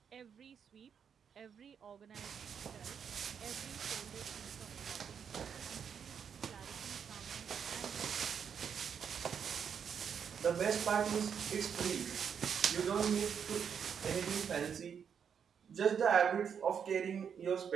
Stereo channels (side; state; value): left; quieter; 7.4 dB